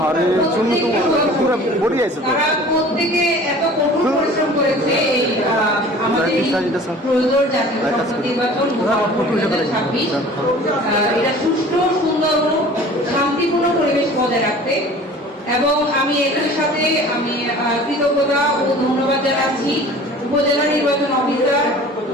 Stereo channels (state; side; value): normal; both; correlation 0.45